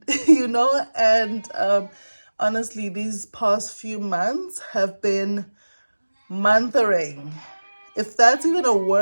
and honestly, these past few months have been monthering, if that's even a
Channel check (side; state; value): both; inverted; correlation -1.00